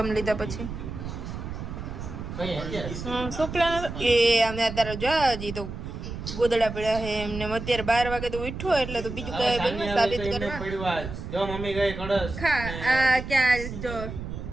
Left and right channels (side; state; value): right; noise; rumble, 8 dB below the sound